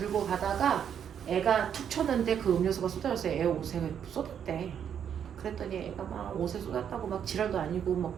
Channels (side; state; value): left; quieter; 8.5 dB